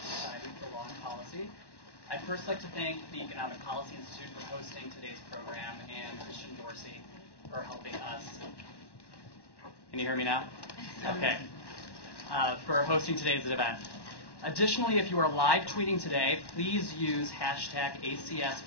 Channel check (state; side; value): late; right; 1.1 ms